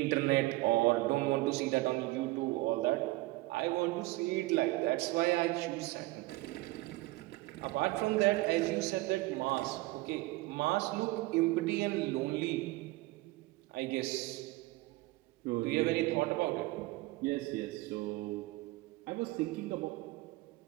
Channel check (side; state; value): left; quieter; 20.5 dB